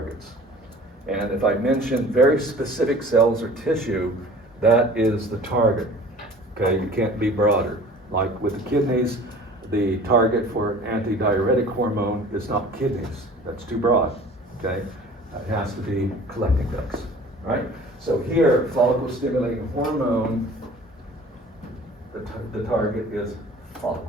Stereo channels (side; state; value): both; normal; correlation 0.45